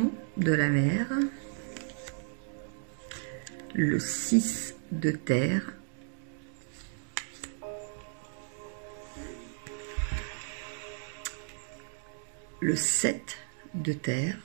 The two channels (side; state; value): left; silent; digital silence